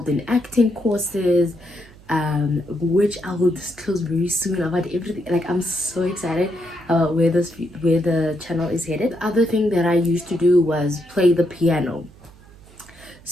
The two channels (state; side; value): noise; right; hum, 23 dB below the sound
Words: in acting courses, which I will disclose very soon about everything. Like, I'm so excited about where the channel is headed. The other thing that I used to do was play the piano.